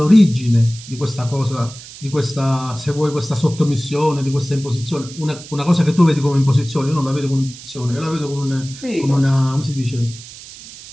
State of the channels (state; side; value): noise; right; hiss, 16 dB below the sound